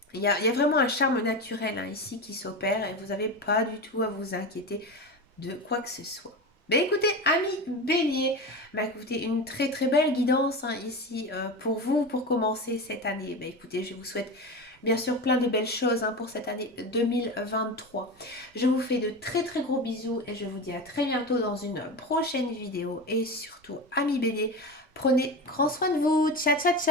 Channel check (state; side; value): normal; both; correlation 0.25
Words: Il y a vraiment un charme naturel, hein, ici qui s'opère et vous n'avez pas du tout à vous inquiéter de quoi que ce soit. Ben écoutez, amis bélier, ben écoutez, une très très belle guidance, hein, ici pour vous, pour commencer cette année. Ben écoutez, je vous souhaite bien sûr plein de belles choses, hein, pour cette année 2023. Je vous fais de très très gros bisous et je vous dis à très bientôt dans une prochaine vidéo. Et surtout, amis bélier, prenez grand soin de vous. Ciao ciao